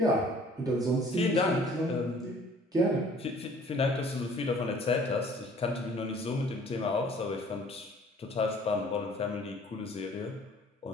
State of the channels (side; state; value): both; normal; correlation 0.54